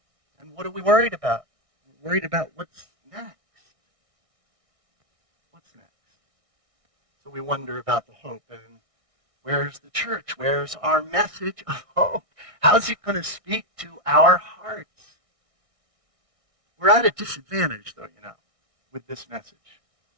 And what are we worried about? We're worried about what's next. What's next? So we wonder about the hope. And where's the church? Where's our message of hope? How's it going to speak to our hearts? We're at a disadvantage, though, with this message.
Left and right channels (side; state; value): left; late; 1.6 ms